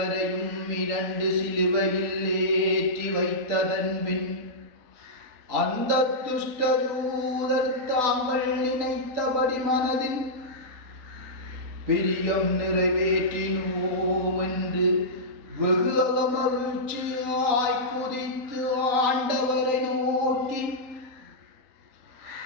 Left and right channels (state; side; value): late; left; 3.9 ms